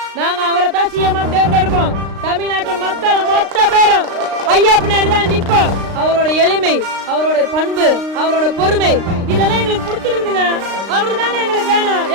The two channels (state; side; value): late; left; 35 ms